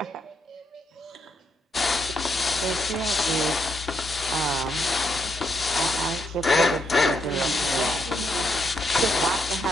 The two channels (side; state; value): both; normal; correlation 0.78